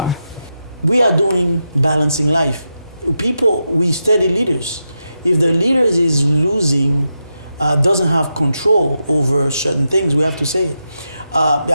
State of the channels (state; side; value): inverted; both; correlation -0.87